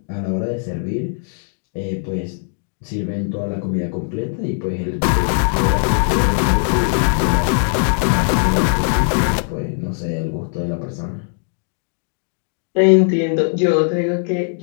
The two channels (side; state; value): right; silent; digital silence